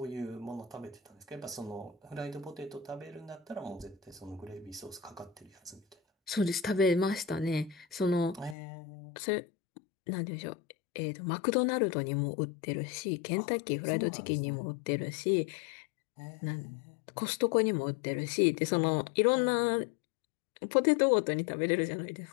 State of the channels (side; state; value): right; drops out; at 8.6 s